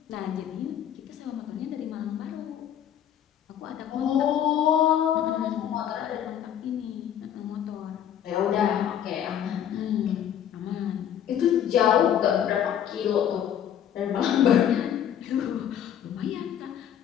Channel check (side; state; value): right; quieter; 9.8 dB